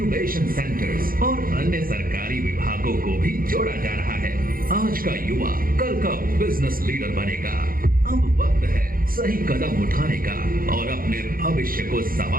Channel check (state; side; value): late; left; 0.42 ms